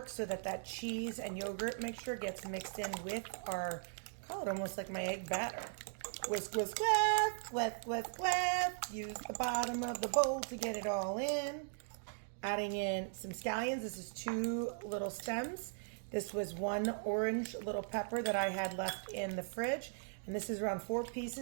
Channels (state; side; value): silent; left; digital silence